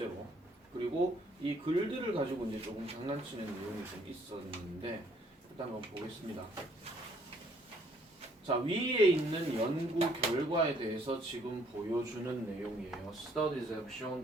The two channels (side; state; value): both; normal; correlation 0.64